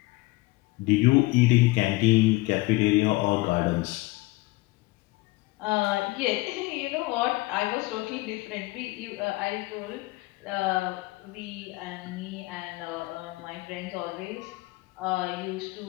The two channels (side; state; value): right; quieter; 21.7 dB